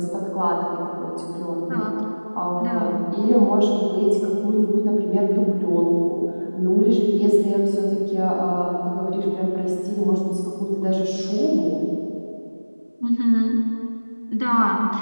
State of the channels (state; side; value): inverted; both; correlation -1.00